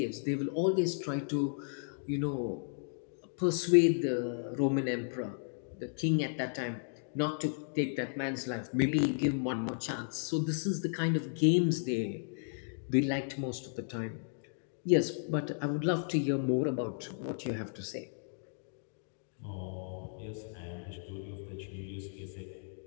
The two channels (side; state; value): right; silent; digital silence